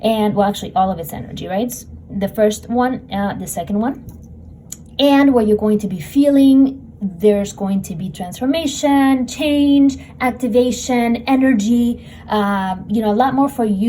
and well, actually all of its energy, right? The first one, the second one, and where you're going to be feeling there's going to be transformation, change, activation, energy, a lot more for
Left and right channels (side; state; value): both; identical; correlation 1.00